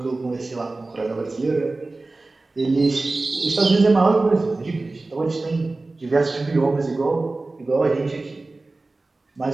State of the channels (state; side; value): quieter; left; 3.3 dB